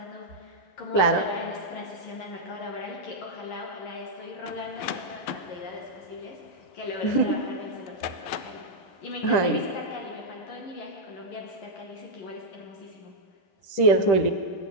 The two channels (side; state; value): right; late; 10 ms